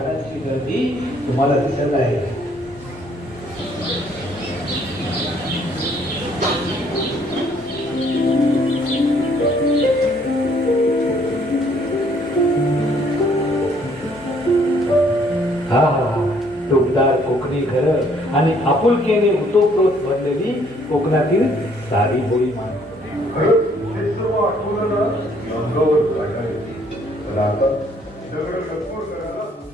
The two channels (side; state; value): both; normal; correlation 0.64